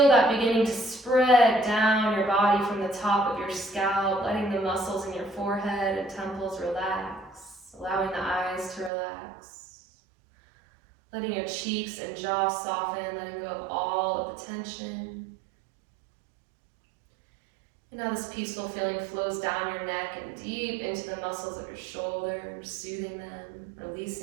that beginning to spread down your body from the top of your scalp, letting the muscles in your forehead and temples relax, allowing the eyes to relax, letting your cheeks and jaw soften, letting go of all of the tension. And now this peaceful feeling flows down your neck and deep into the muscles of your shoulders, soothing them,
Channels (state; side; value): drops out; left; at 8.9 s